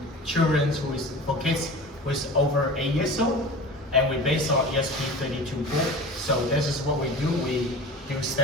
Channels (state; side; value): normal; both; correlation 0.36